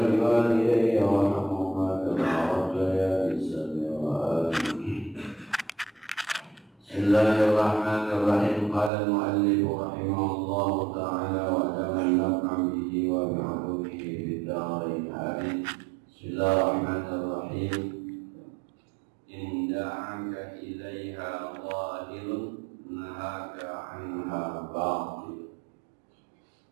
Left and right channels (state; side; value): drops out; left; at 8.9 s